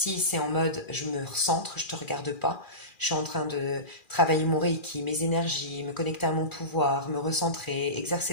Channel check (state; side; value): late; right; 2.4 ms